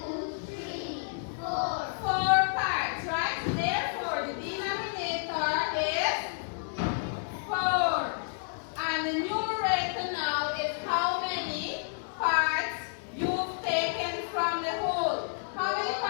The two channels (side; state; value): right; silent; digital silence